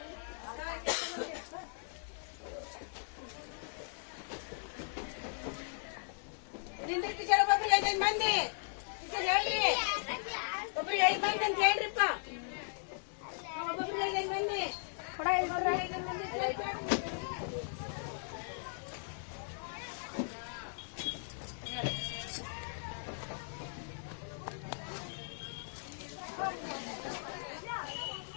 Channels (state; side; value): silent; right; digital silence